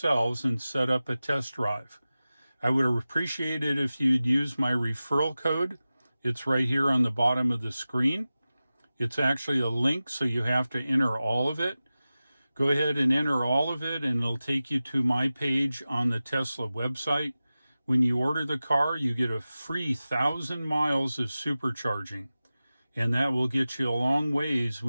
and set up a test drive. I would appreciate it if you'd use my referral code. It's right here on the bottom of the screen. It's actually a link, so you have to enter all of it. Go ahead and enter all of it, and it'll take you to my page on the Tesla website. When you order the car, you get a free 1,000 miles of supercharging, and that will get you a long ways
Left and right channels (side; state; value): both; inverted; correlation -0.95